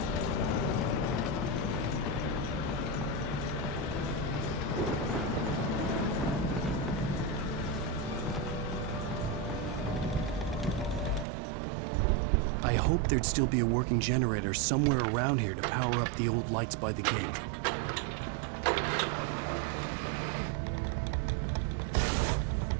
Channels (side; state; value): left; drops out; at 11.2 s